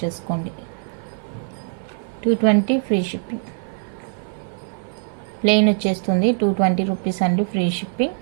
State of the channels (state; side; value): silent; left; 56 dB below the other